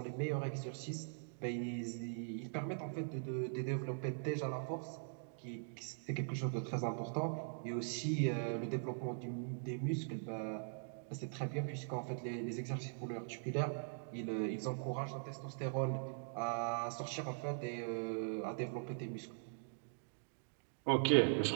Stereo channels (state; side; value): silent; left; digital silence